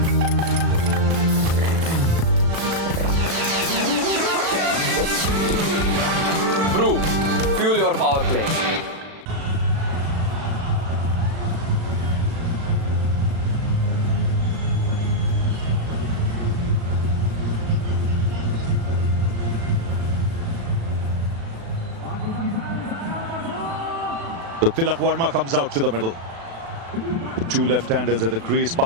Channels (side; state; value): left; late; 36 ms